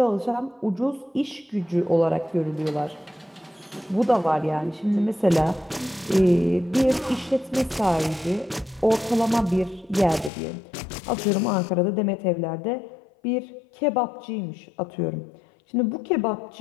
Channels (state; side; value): drops out; right; at 10.3 s